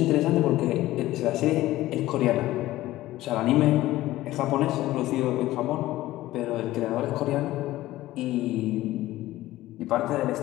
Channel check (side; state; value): right; quieter; 16.2 dB